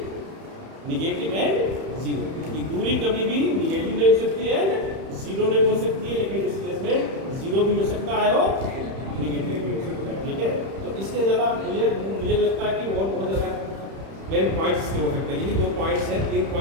निगेटिव एंड जीरो, की दूरी कभी भी निगेटिव नहीं हो सकती है, जीरो नहीं हो सकती है, लेकिन डिस्प्लेसमेंट जीरो भी हो सकता है और निगेटिव भी हो सकता है, ठीक है। तो इसके ज़्यादा मुझे लगता है कि और बहुत ज़्यादा मेन पॉइंट्स इसके हो सकते हैं। यही 2 पॉइंट्स हैं, 3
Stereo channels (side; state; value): left; late; 31 ms